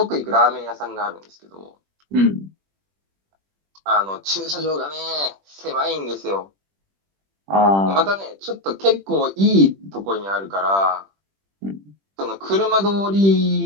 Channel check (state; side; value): late; left; 20 ms